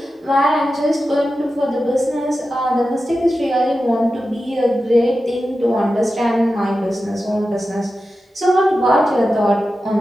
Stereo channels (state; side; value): normal; both; correlation 0.92